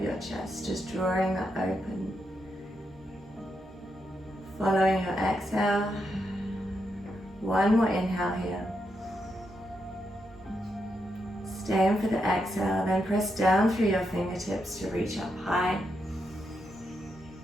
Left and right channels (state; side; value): normal; both; correlation 0.83